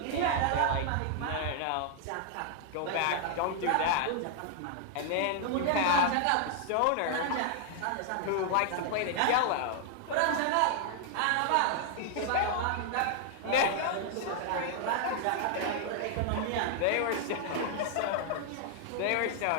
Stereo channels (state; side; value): different; both; correlation 0.00